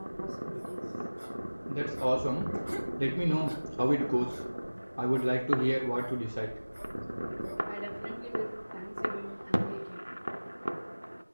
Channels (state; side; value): inverted; both; correlation -1.00